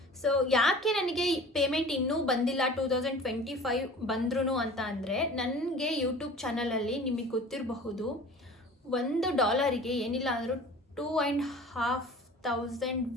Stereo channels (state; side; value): normal; both; correlation 0.43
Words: ಸೊ ಯಾಕೆ ನನಗೆ ಪೇಮೆಂಟ್ ಇನ್ನೂ ಬಂದಿಲ್ಲ 2025 ಬಂದ್ರೂ ಅಂತ ಅಂದರೆ, ನನಗೆ ಯೂಟ್ಯೂಬ್ ಚಾನಲಲ್ಲಿ ನಿಮಗೆ ಗೊತ್ತಿರಬಹುದು $1 ಏನಿಲ್ಲ ಅಂದರೂ 2,500